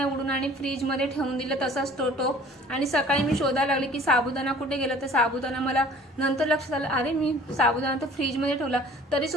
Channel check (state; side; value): normal; both; correlation 0.50